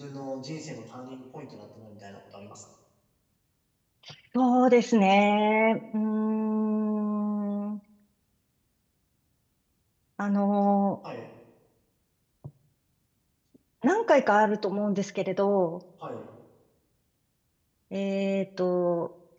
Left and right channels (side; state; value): both; identical; correlation 1.00